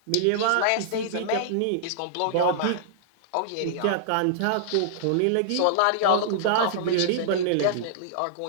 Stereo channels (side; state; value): both; different; correlation -0.01